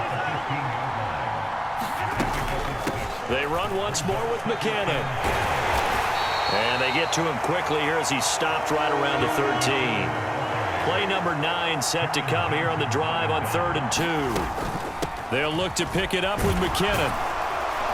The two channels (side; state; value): both; identical; correlation 1.00